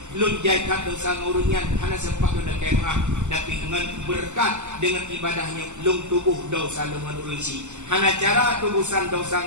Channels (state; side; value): late; left; 0.84 ms